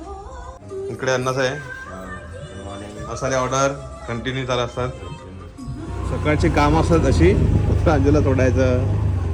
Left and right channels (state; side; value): identical; both; correlation 1.00